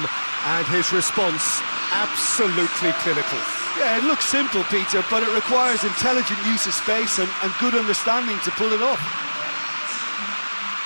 and his response absolutely clinical. Yeah, it looks simple, Peter, but it requires intelligent use of space and good understanding to pull it off.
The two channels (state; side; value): inverted; both; correlation -1.00